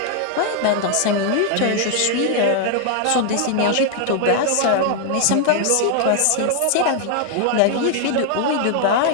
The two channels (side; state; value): both; different; correlation 0.00